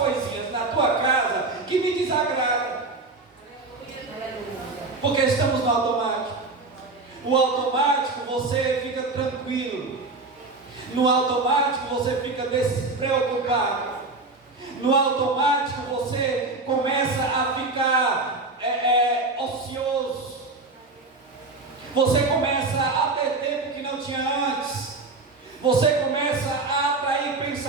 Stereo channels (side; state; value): left; quieter; 3.5 dB